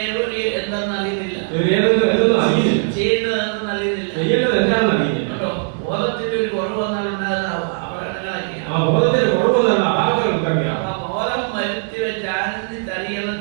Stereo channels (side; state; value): left; silent; 66 dB below the other